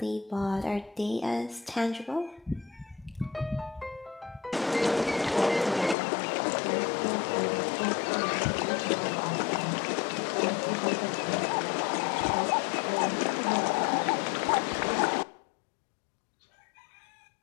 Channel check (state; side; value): drops out; right; at 6.0 s